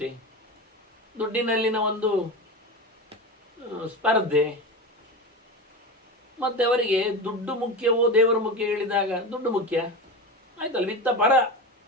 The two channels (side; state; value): both; normal; correlation 0.25